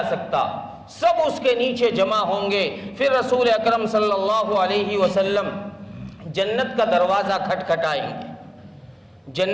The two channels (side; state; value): both; identical; correlation 1.00